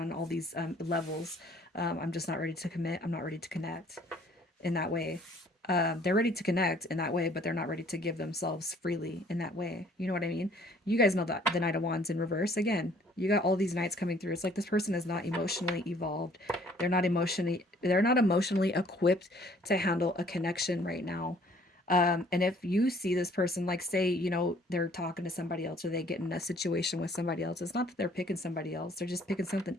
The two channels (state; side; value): normal; both; correlation 0.59